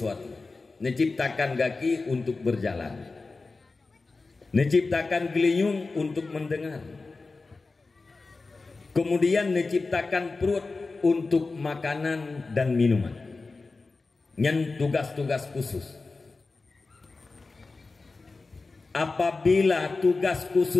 Menciptakan kaki untuk berjalan. Menciptakan geliung untuk mendengar. Kemudian menciptakan perut untuk makanan dan minuman. Yang tugas-tugas khusus. Apabila tugas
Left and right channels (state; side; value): quieter; right; 3.8 dB